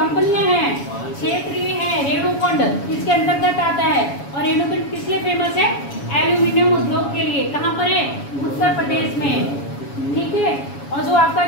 हैं, क्षेत्रीय है। रेणुकुंड किसके अंतर्गत आता है? और रेणुकुंड किस लिए फेमस है? एल्यूमिनियम उद्योग के लिए। कहाँ पर है? उत्तर प्रदेश में, ठीक है। और जो आपका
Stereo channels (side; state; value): right; late; 7.1 ms